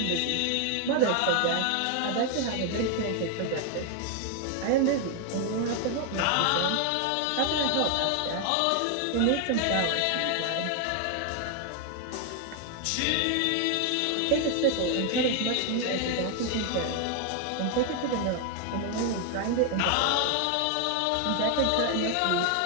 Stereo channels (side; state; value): both; different; correlation 0.00